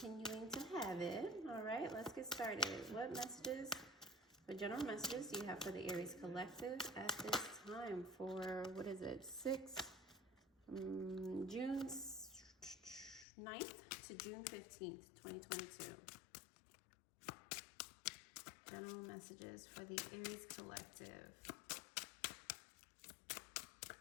to have it. All right, let's get started. What messages, what general messages do you have for the Aries collective at this time for, what is it, June 9th to June 15th, 2022. General messages for the Aries collective.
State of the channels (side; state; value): right; drops out; at 13.2 s